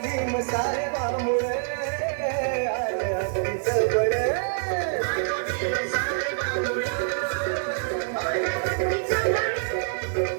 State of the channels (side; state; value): left; silent; 61 dB below the other